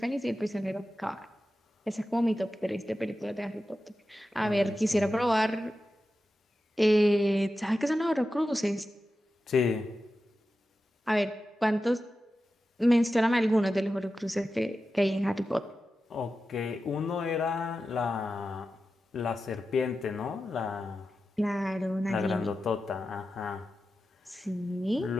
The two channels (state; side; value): normal; both; correlation 0.92